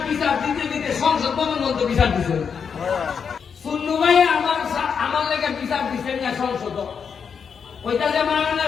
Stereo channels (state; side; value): quieter; right; 6.6 dB